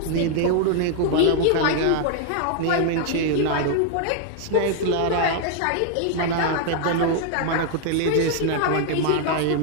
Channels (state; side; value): different; both; correlation 0.00